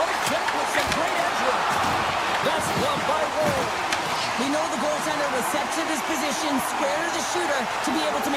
We know the goaltender was set to this position, square to the shooter, to be able to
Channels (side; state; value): left; noise; hum, 30 dB below the sound